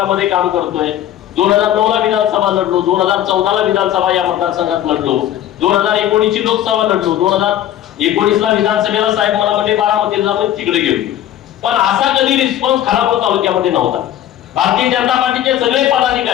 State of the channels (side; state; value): right; quieter; 11.8 dB